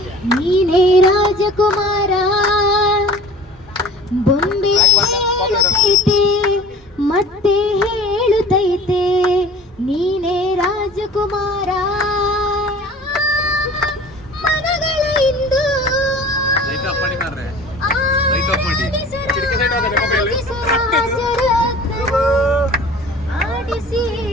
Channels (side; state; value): both; normal; correlation 0.44